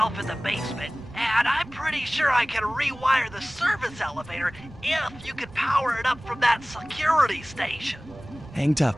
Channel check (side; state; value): right; noise; rumble, 23 dB below the sound